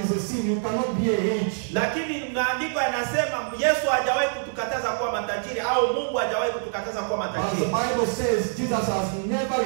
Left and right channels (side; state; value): left; silent; digital silence